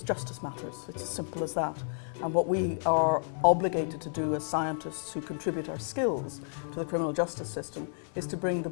justice matters. It's as simple as that. And what we are obligated to do as scientists who contribute our skills to the criminal justice system is to bring the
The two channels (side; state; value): right; silent; digital silence